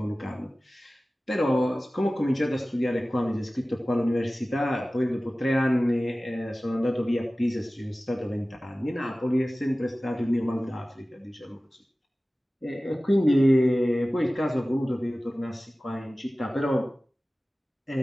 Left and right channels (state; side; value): normal; both; correlation 0.97